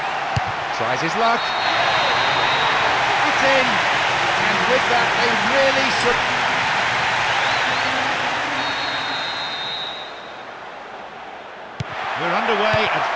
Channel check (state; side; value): identical; both; correlation 1.00